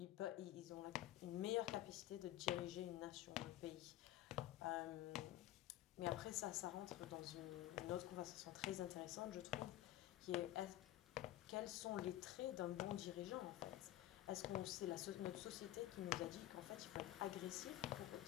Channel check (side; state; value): right; quieter; 14.4 dB